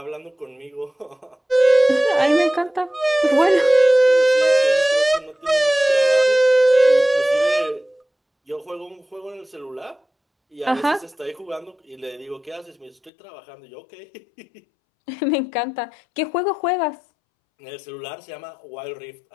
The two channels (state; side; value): drops out; right; at 13.1 s